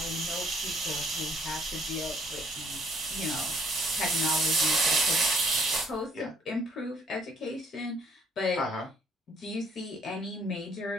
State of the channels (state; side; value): normal; both; correlation 0.63